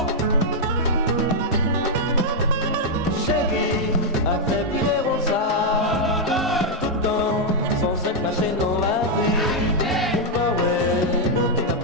Chérie, a fait virer Rosa. Tout le temps, sans s'être caché dans la rue. Et pas ouais, nous t'as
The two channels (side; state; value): both; normal; correlation -0.03